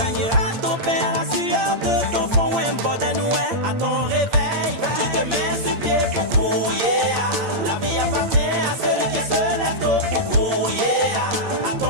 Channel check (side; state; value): left; late; 8.8 ms